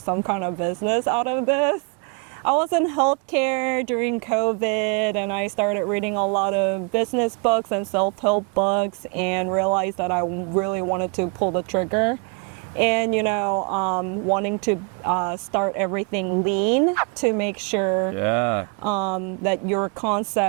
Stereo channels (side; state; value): left; quieter; 33.7 dB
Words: kind of business out of this. I was in healthcare during COVID, and I started reading a lot of business books and self-help books and realized that I really wanted to pull the trigger. And, wanting to start everything lean to make sure that your